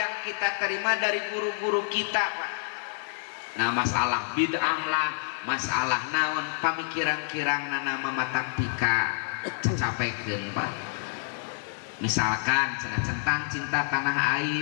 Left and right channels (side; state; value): right; silent; digital silence